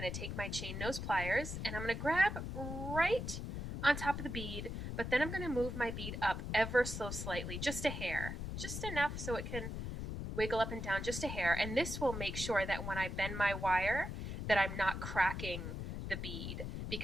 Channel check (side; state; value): left; noise; rumble, 5 dB below the sound